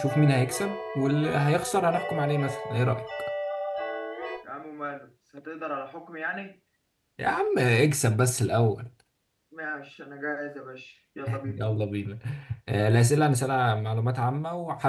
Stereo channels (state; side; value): identical; both; correlation 1.00